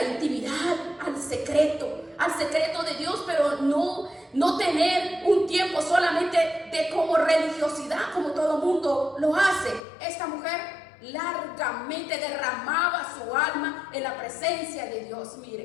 intimidad, al secreto de Dios, pero no tener un tiempo solamente de como religiosidad, como todo mundo lo hace. Esta mujer largamente derramaba su alma en la presencia de Dios.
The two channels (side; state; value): right; drops out; at 9.8 s